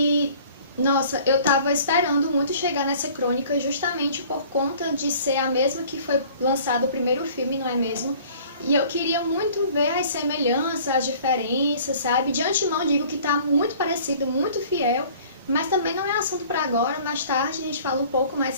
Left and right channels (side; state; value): both; inverted; correlation -0.50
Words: nossa, eu tava esperando muito chegar nessa crônica justamente por conta de ser a mesma que foi lançado o primeiro filme, não é mesmo? E eu queria muito ver as semelhanças, as diferenças, sabe? De antemão digo que tá muito parecido, muito fiel, mas também não é assunto para agora, mais tarde a gente fala um pouco mais